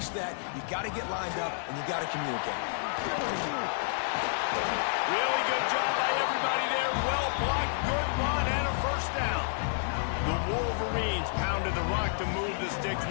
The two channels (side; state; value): right; silent; digital silence